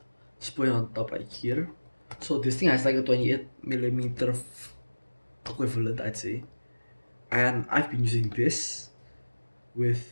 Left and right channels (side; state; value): both; inverted; correlation -1.00